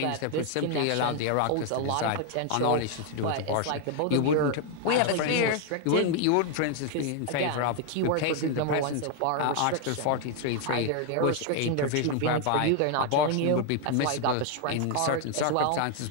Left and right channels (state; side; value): different; both; correlation 0.01